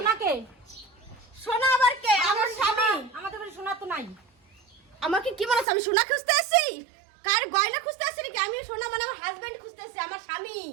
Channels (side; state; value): left; drops out; at 5.7 s